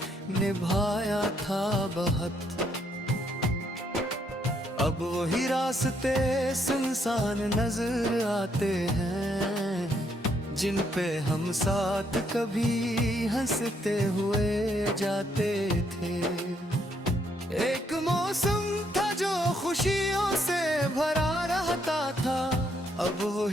निभाया था बहुत। अब वही रास्ते सुनसान नजर आते हैं जिन पे हम साथ कभी हंसते हुए जाते थे। एक मौसम था जो खुशियों से भरा रहता था, अब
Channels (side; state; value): both; normal; correlation 0.73